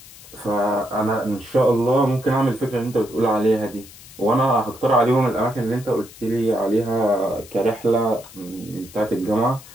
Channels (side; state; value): left; noise; hiss, 20 dB below the sound